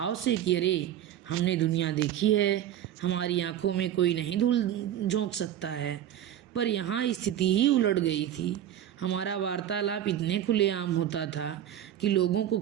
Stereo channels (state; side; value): quieter; left; 11.0 dB